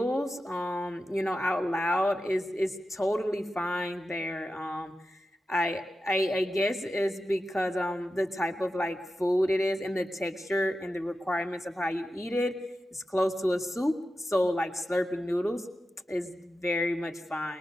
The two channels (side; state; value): both; normal; correlation 0.91